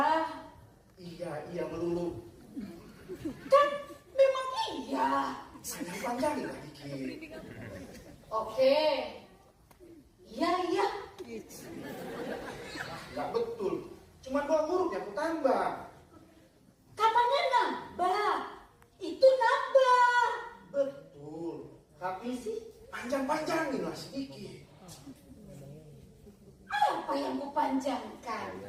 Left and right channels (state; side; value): identical; both; correlation 1.00